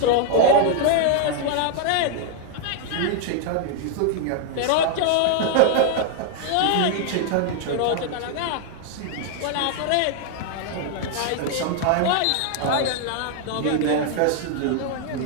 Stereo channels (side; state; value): both; different; correlation 0.00